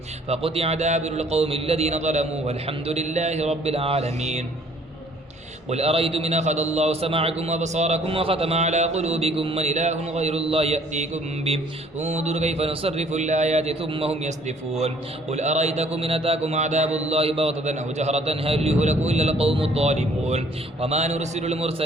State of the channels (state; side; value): normal; both; correlation 0.59